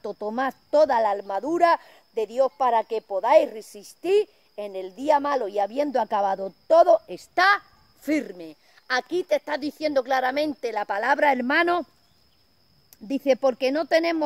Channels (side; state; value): both; identical; correlation 1.00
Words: tomad toda la armadura de Dios para que podáis resistir en el día malo, y habiendo acabado todo, está firme. Aquí te está diciendo claramente la palabra, hermano. Dice: porque no